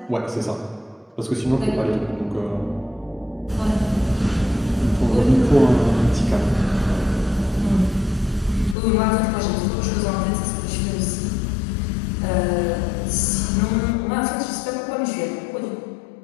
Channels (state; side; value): drops out; right; at 8.8 s